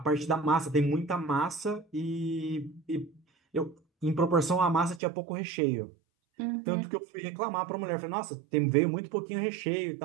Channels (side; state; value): left; drops out; at 5.0 s